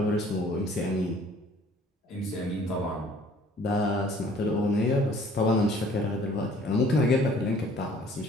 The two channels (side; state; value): both; normal; correlation 0.55